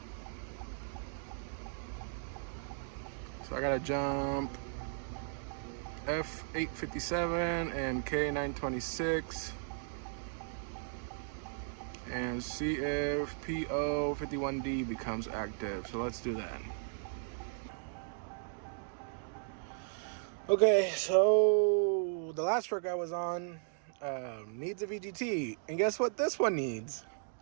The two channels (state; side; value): silent; left; digital silence